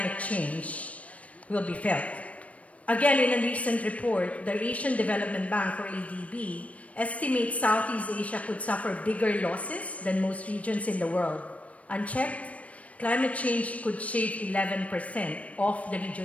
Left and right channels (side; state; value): right; late; 0.066 ms